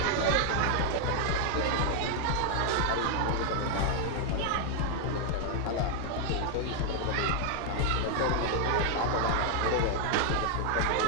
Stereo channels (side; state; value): both; different; correlation 0.00